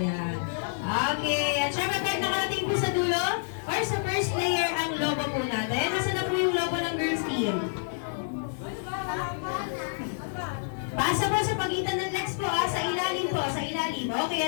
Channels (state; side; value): silent; right; 59 dB below the other